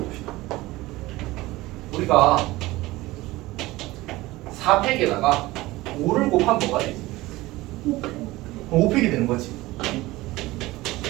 우리가 4팩에다가 5를 곱하면 뭐가 되지? 5팩이 되는 거지.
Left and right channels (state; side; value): quieter; left; 19.1 dB